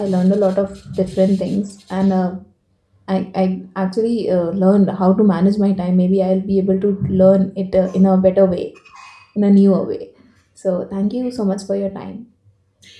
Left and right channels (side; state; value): both; identical; correlation 1.00